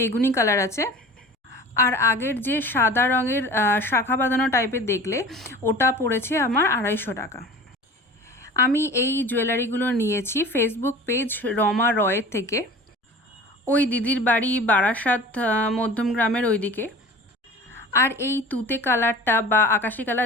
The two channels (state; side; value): normal; both; correlation 0.39